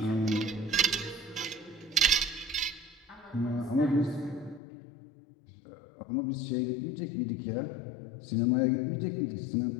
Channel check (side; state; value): right; drops out; at 4.6 s